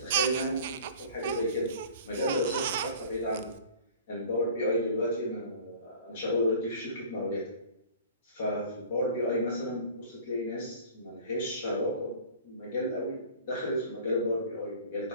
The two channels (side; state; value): both; inverted; correlation -0.45